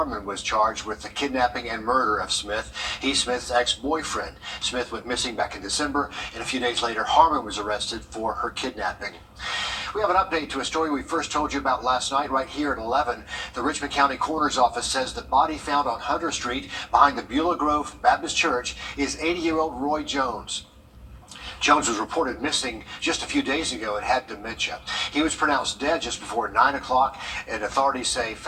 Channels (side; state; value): both; identical; correlation 1.00